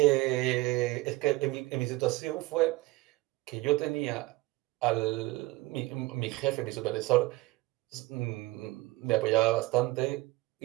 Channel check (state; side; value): quieter; left; 20.0 dB